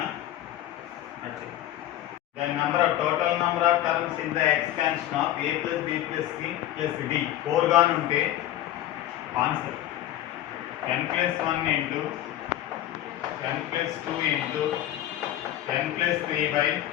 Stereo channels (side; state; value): right; quieter; 13.1 dB